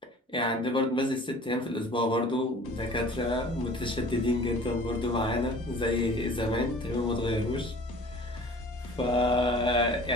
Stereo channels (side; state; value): both; normal; correlation 0.46